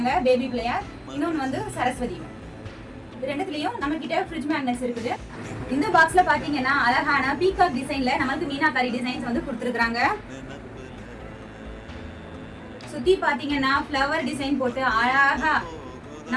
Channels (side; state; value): both; identical; correlation 1.00